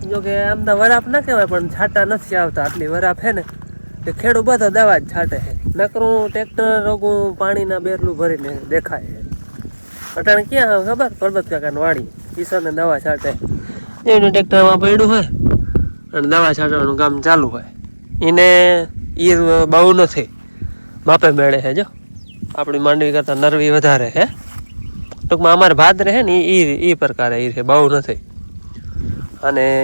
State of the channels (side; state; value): both; inverted; correlation -1.00